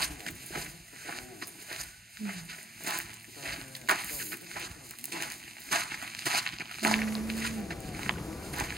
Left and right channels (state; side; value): normal; both; correlation 0.67